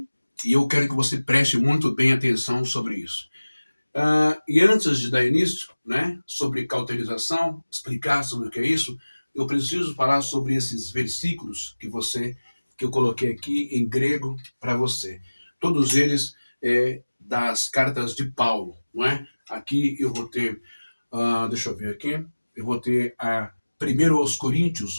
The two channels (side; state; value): both; inverted; correlation -1.00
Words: E eu quero que você preste muito bem atenção sobre isso. E antes de dar início, né, sobre cauterização, explicar sobre o que é isso, eu preciso falar sobre esses versículos que eu coloquei aqui em grego para você. Todos eles das cartas de Paulo, não é? Aqui eu vou ter, deixa eu ver aqui, eu vou ter a 1 aos